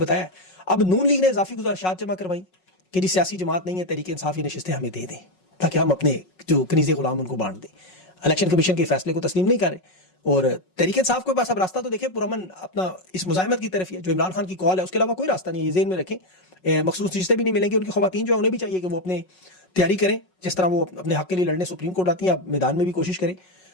अब नून लीग ने इजाफी गुजारिशात जमा करवाई कि जी सियासी जमात नहीं है, तहरीक इंसाफ ये नशिस्तें हमें दे दें ताकि हम अपने जो कनीज़े गुलाम उनको बांट दें। इलेक्शन कमीशन के फैसले को तस्लीम नहीं कर रहे और तहरीक इंसाफ के पास अब रास्ता तो देखें पुरअमन अपना इस मुजाहिमत की तरफ ही है, जो इमरान खान की कॉल है उसके अलावा कोई रास्ता नहीं है। ये ज़हन में रखें, मखसूस चीज़ें भी नहीं मिलेंगी। उनकी ख़वातीन जो है उन्हें भी चाहिए कि वो अपने तैयारी करें, जिस तरह वो अपने हक़ के लिए लड़ने सुप्रीम कोर्ट आती हैं, आप मैदान में भी कोशिश करें।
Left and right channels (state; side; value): late; right; 5.4 ms